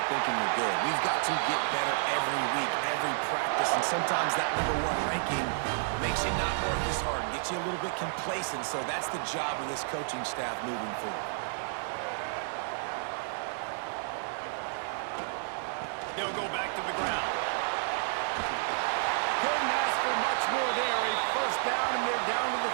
thinking you're good. We've got to get better every week, every practice, and sometimes that #1 ranking makes you not work as hard, gets you a little bit complacent, so that's the job of this coaching staff moving forward. They'll go back to the ground. Couldn't ask for much more there. A first down, and they're down to the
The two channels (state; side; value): silent; left; digital silence